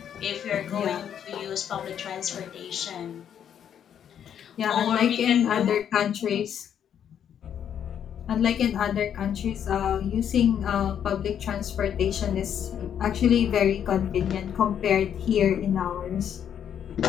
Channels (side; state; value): right; quieter; 9.0 dB